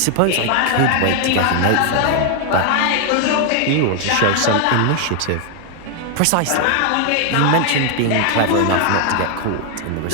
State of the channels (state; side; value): different; both; correlation 0.00